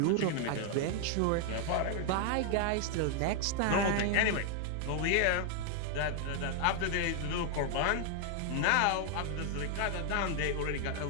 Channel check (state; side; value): different; both; correlation 0.00